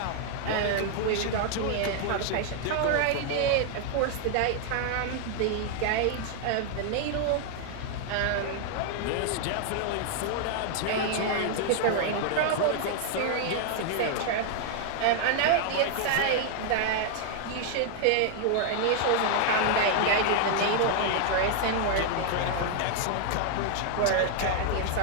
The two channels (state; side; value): different; both; correlation 0.00